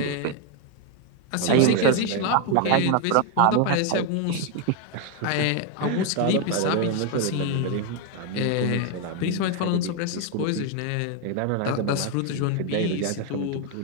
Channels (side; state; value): both; different; correlation 0.01